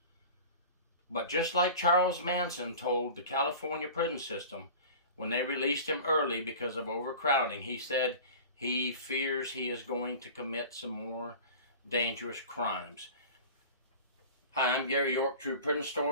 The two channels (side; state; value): both; inverted; correlation -0.38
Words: But just like Charles Manson told the California prison system when they released him early because of overcrowding, he said he fears he is going to commit some more dangerous crimes. Hi, I'm Gary York, True Prison